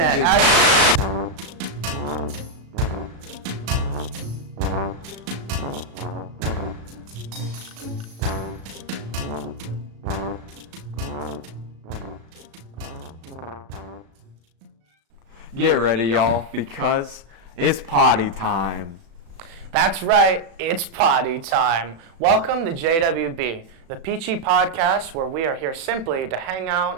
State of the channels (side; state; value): left; late; 36 ms